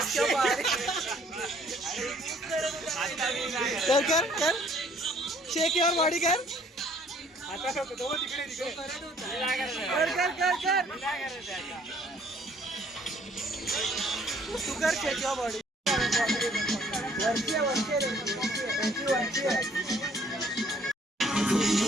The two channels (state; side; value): normal; both; correlation 0.61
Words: कर कर शेक युअर बॉडी कर. तू कर शेक युअर बॉडी.